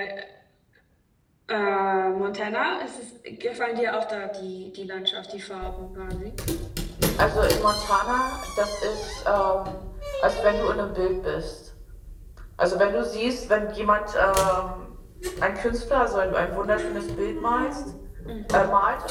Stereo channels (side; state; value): both; identical; correlation 1.00